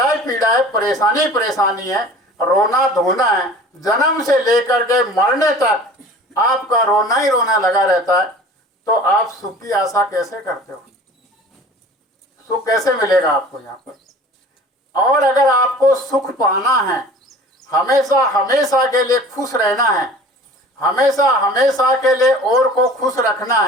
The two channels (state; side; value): normal; both; correlation 0.44